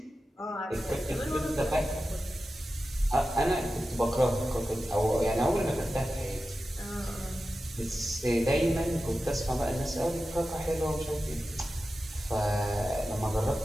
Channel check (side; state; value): both; normal; correlation 0.93